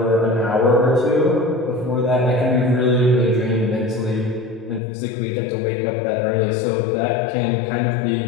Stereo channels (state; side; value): drops out; right; at 4.8 s